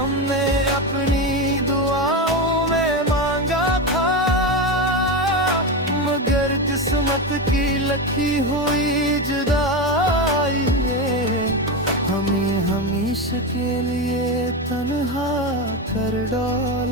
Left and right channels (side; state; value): both; normal; correlation 0.15